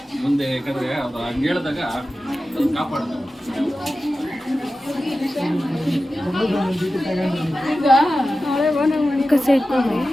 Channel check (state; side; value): normal; both; correlation 0.94